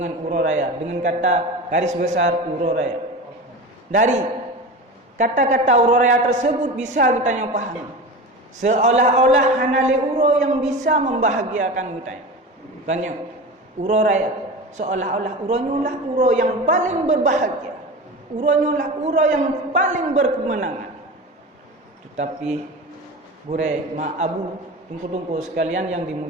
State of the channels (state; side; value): normal; both; correlation 0.29